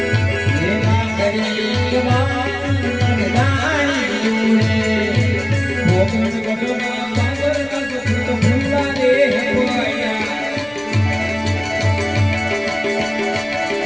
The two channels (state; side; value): noise; left; rumble, 25 dB below the sound